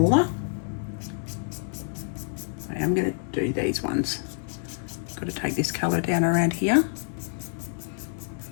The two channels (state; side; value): silent; right; digital silence